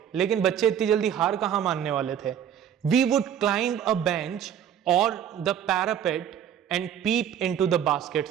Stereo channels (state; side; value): quieter; left; 9.3 dB